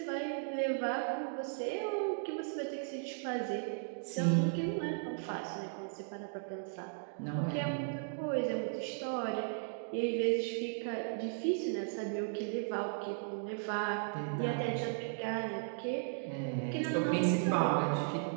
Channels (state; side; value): silent; left; digital silence